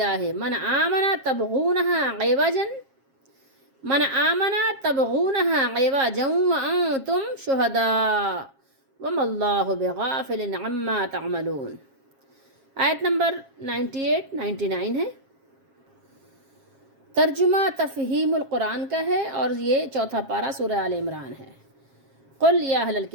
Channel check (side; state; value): left; late; 7.4 ms